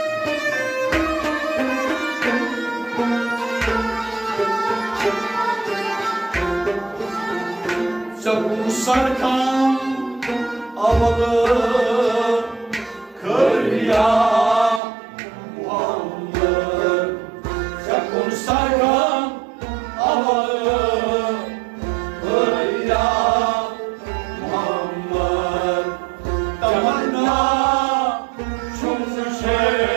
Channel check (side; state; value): left; drops out; at 14.8 s